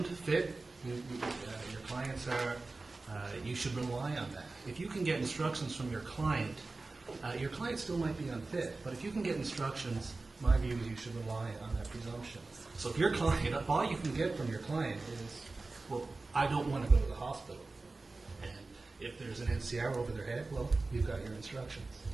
fit. Your clients are, you should rely on that. If you can get instructions from your client still might be unfit, but if you can get instructions, my view is you should rely on that presumption. So if your client, if all you can get from your client is, well, I don't want to go to the hospital, and if there's an NCR over their head, well, you've got your instructions.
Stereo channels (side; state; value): left; quieter; 3.5 dB